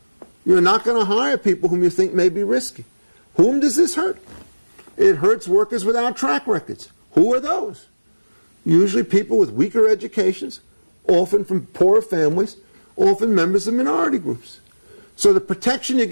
you're not going to hire people whom you think may be risky. Whom does this hurt? It hurts workers without track records. Who are those? Usually people with weaker educations, often from poorer families, often members of minority groups. So the protection you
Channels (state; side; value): inverted; both; correlation -1.00